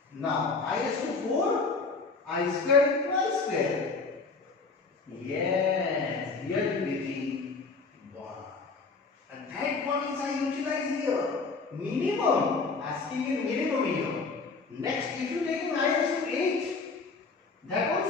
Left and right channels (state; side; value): quieter; right; 4.3 dB